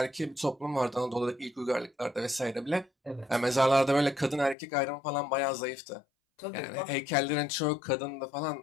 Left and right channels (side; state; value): right; drops out; at 4.5 s